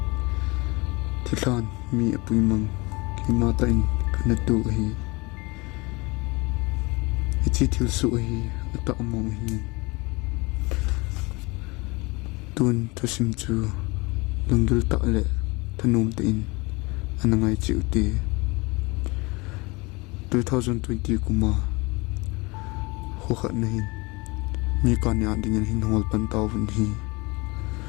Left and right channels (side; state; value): right; quieter; 25.5 dB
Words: thilan mi apui mang ki ma ta in kana tu hi chi thil su hi ata among hi tun thosim chu lungdul ta le thanum te in anangai chi uti 2020 kuma ho khat na hin mi ka nya ding hin hol pan taw vun hi